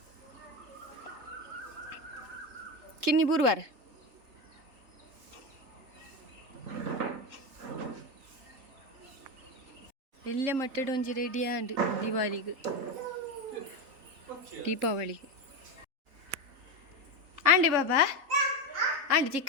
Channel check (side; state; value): left; late; 3.7 ms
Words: ಕಿನ್ನಿ ಬುರುವಾರ ಎಲ್ಲ ಮಟ್ಟಡ ಒಂಜಿ ರೆಡಿ ಆಂಡ್ ದೀಪಾವಳಿಗೆ ಆಂಡೆ ಬಾಬಾ ಆಂಡೆ